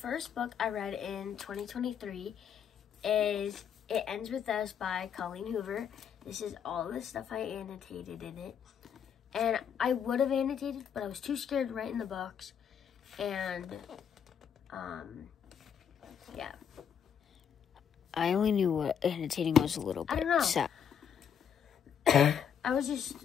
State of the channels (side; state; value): right; quieter; 8.0 dB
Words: book I read in 2023 is It Ends With Us by Colleen Hoover. This is all the stuff I annotated in it. And I would have annotated, but I was too scared to write in the books. And, yeah. I only knew what annotating was a little bit. I don't know. So. I was just